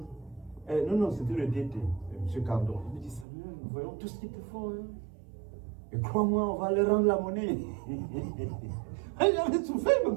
non, c'était le DT, M. Cardon. Il me dit, Samuel, nous voyons tout ce qu'ils te font. Hein. Et crois-moi, on va leur rendre la monnaie. J'avais souffert, il me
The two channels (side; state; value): left; drops out; at 3.2 s